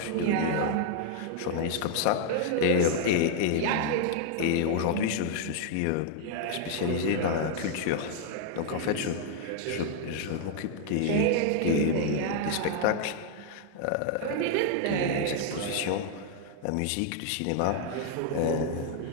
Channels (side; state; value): both; different; correlation 0.00